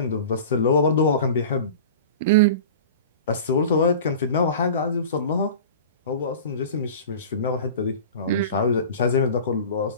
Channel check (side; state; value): both; inverted; correlation -0.36